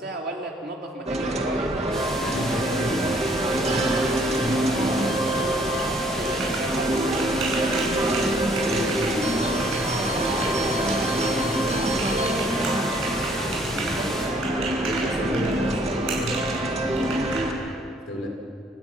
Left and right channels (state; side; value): normal; both; correlation 0.62